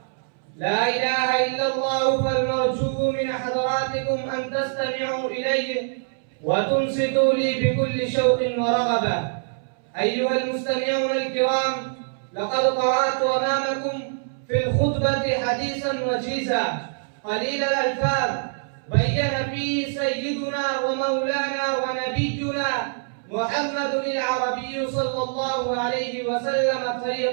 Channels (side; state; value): left; silent; 62 dB below the other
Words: لا إله إلا الله. فالمرجو من حضراتكم أن تستمعوا إلي وتنصتوا لي بكل شوق ورغبة. أيها المستمعون الكرام، لقد قرأت أمامكم في الخطبة حديثا وجيزا قليل الألفاظ بين فيه سيدنا ومولانا ونبينا محمد العربي صلى الله عليه وسلم